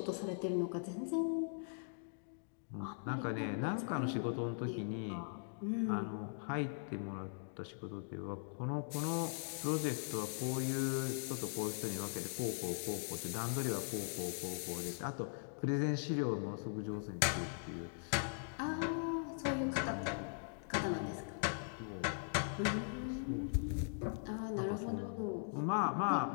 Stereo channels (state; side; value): silent; right; digital silence